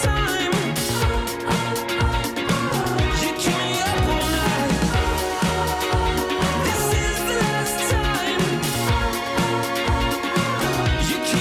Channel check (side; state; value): both; identical; correlation 1.00